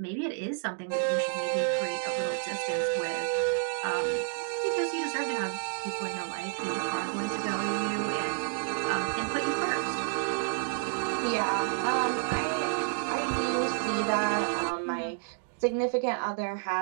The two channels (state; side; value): silent; left; digital silence